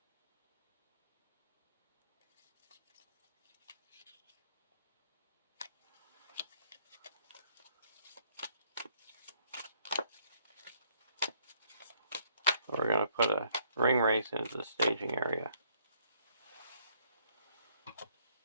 We're going to put a ring race into the staging area.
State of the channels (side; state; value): both; inverted; correlation -0.66